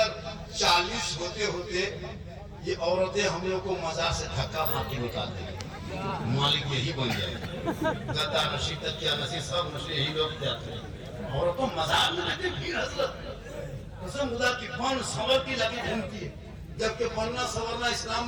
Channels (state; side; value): identical; both; correlation 1.00